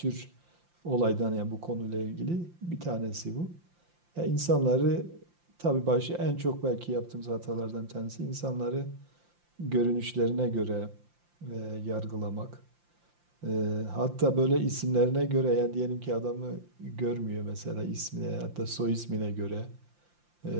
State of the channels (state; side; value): late; left; 5.8 ms